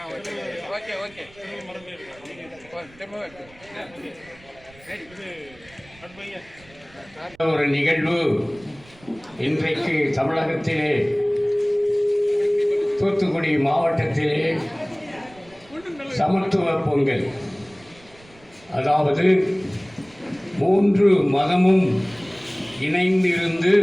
okay ஒரு நிகழ்வு இன்றைக்கு தமிழகத்திலே தூத்துக்குடி மாவட்டத்திலே சமத்துவ பொங்கல், அதாவது 3 மதமும் இணைந்திருந்து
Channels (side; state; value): right; noise; rumble, 26 dB below the sound